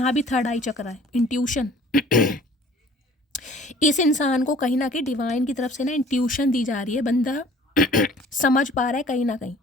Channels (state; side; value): normal; both; correlation 0.51